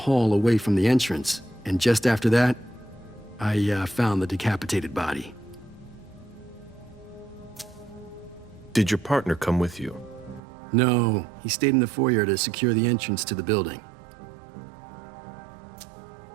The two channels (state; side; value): drops out; left; at 10.4 s